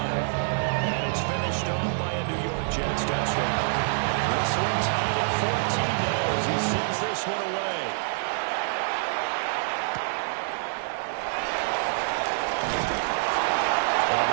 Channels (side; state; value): left; silent; digital silence